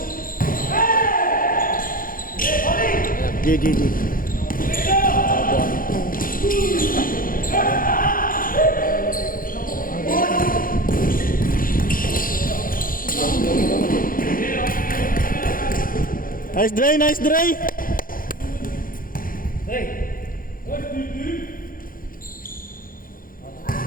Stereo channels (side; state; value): right; late; 0.41 ms